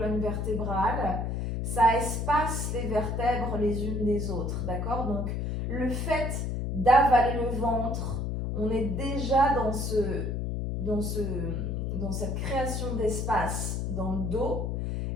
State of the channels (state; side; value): noise; left; hum, 1 dB below the sound